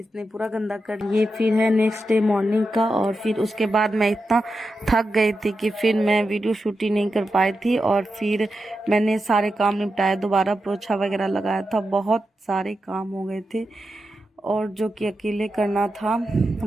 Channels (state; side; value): normal; both; correlation 0.89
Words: पूरा गंदा कर। ये फिर है नेक्स्ट डे मॉर्निंग का, और फिर उसके बाद मैं इतना थक गई थी कि फिर मैं वीडियो शूट ही नहीं कर पाई थी। और फिर मैंने सारे काम निपटाए, दोबारा पोछा वगैरह लगाया था, बहुत सारे काम हो गए थे, और जो कि अकेले करना था।